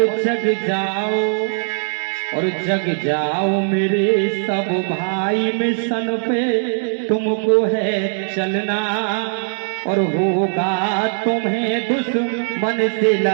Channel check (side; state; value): left; silent; digital silence